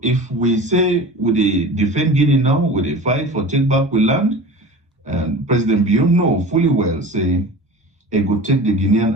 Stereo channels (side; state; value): both; normal; correlation 0.36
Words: if we say we defend Guinea now, we they fight for take back we land, and President Bion know fully well, say, it could take the